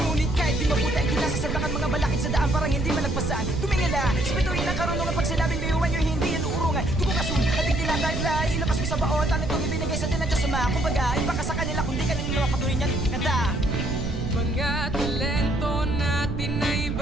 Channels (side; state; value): right; noise; rumble, 2 dB below the sound